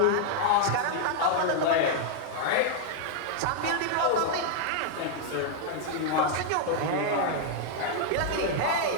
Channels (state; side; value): different; both; correlation -0.01